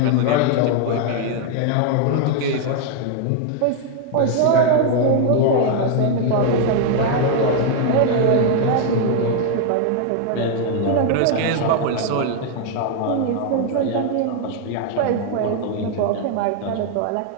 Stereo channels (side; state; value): both; different; correlation 0.00